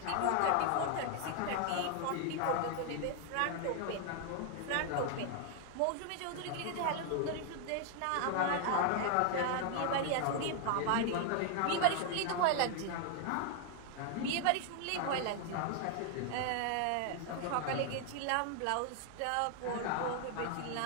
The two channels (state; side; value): different; both; correlation 0.00